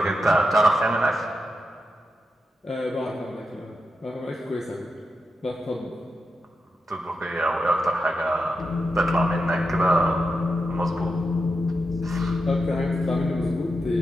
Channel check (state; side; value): normal; both; correlation 0.87